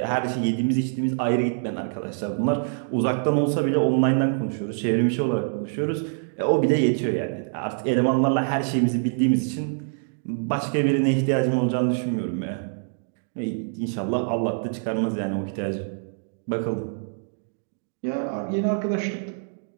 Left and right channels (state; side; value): silent; left; digital silence